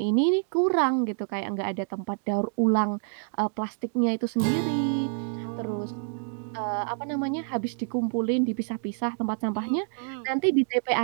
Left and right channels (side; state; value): left; silent; 60 dB below the other